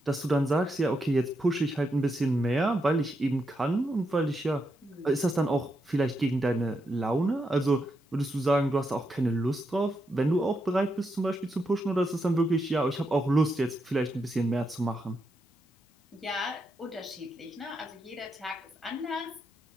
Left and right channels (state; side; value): normal; both; correlation 0.83